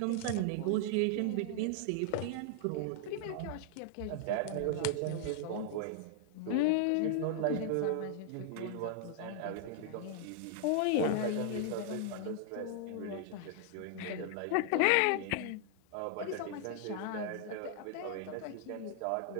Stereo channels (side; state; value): both; different; correlation -0.01